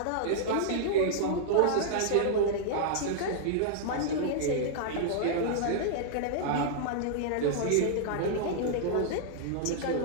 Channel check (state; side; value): different; both; correlation -0.01